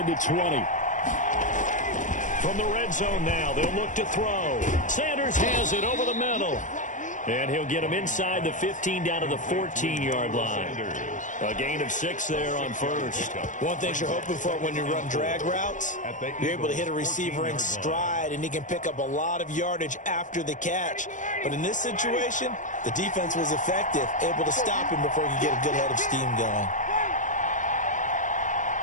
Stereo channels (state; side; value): late; right; 0.37 ms